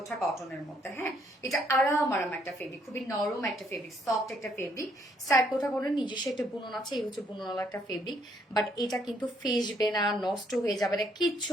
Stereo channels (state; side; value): normal; both; correlation 0.69